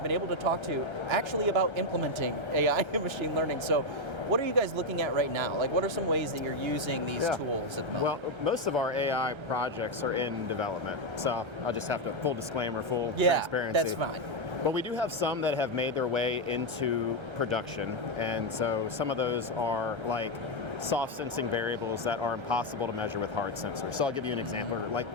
been able to talk to actually about implementing AI and machine learning. So what are you guys looking at right now? Like, what are some ways that you're using these tools at the moment? Well, most of our AI projects are in development, so I'll just have to, full disclaimer, full transparency. That's fine. But we do have some that have made their way into production, and so some of those are like soft sensing variables that are impossible to measure with hard sensors. So I'll give you an example, like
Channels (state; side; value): late; left; 1.3 ms